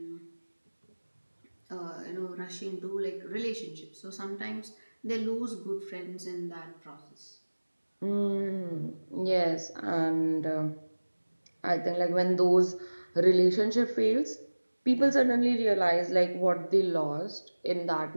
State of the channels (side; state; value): both; inverted; correlation -1.00